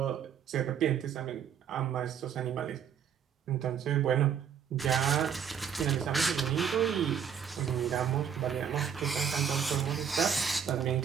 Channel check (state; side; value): quieter; left; 7.9 dB